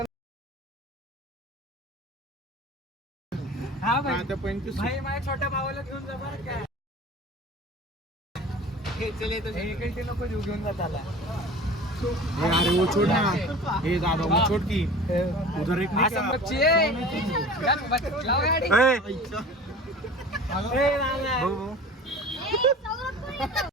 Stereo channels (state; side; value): normal; both; correlation 0.40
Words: हा भाई भाई माझ्या छोट्या भावाला घेऊन जा बरं काय. हे नको घेऊन जात आला. अरे वो छोड़ ना. हे दादा वो छोड़ की उधर एक असं बच्ची आहे. लाव गाडी. ए, ए, लाव, लाव. भाऊ, भाऊ. ए, सौरभ कोण येतो?